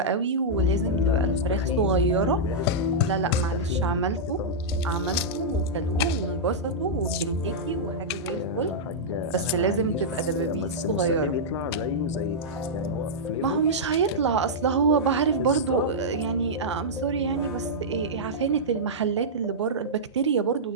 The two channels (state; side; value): normal; both; correlation -0.10